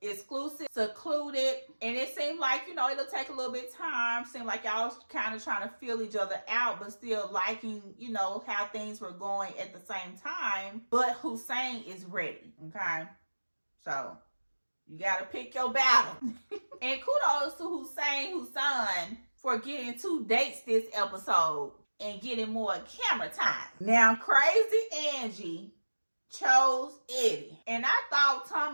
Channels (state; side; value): inverted; both; correlation -1.00